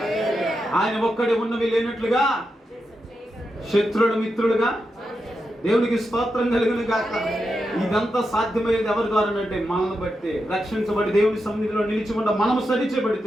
ఆయన ఒక్కడే ఉన్నవి లేనట్లుగా శత్రుడు మిత్రుడుగా. దేవునికి స్తోత్రం కలుగును గాక. ఇదంతా సాధ్యమయ్యేది ఎవరి ద్వారా అంటే మనల్ని బట్టి. రక్షించబడి దేవుని సన్నిధిలో నిలిచి ఉండ మనము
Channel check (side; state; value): both; normal; correlation 0.87